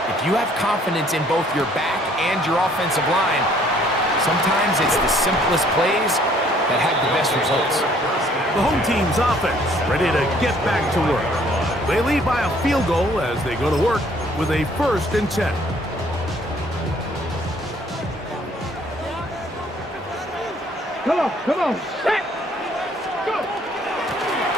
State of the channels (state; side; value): normal; both; correlation 0.61